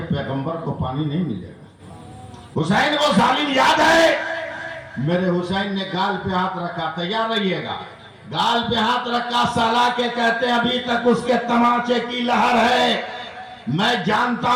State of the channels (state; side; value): identical; both; correlation 1.00